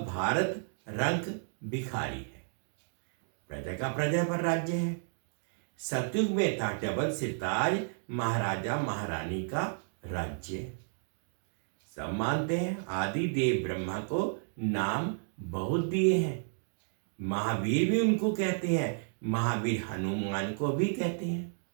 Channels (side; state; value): left; silent; digital silence